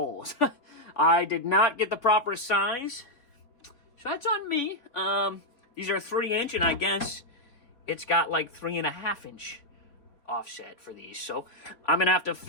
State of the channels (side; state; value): right; late; 3.5 ms